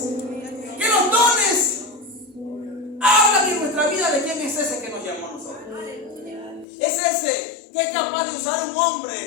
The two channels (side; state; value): right; drops out; at 6.7 s